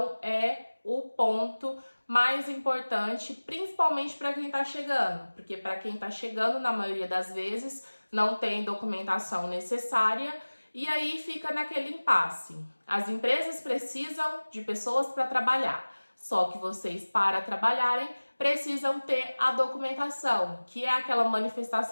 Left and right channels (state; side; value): inverted; both; correlation -1.00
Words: é o ponto mais importante, principalmente para quem está chegando. Porque para quem está chegando, na maioria das vezes, não tem documentação necessária e aí fica naquele impasse. As empresas precisam de pessoas para trabalhar. Só que vocês, para trabalharem, precisam ter a documentação, que é aquela